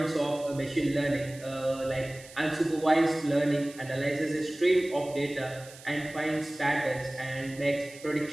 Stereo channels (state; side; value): noise; right; hiss, 19 dB below the sound